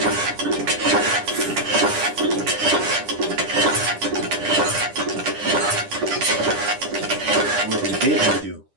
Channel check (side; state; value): left; late; 10 ms